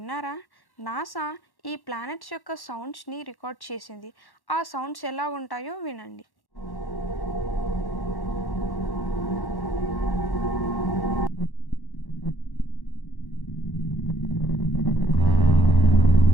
నాసా ఈ ప్లానెట్స్ యొక్క సౌండ్స్ని రికార్డ్ చేసింది. ఆ సౌండ్స్ ఎలా ఉంటాయో వినండి.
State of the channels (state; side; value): late; right; 1.1 ms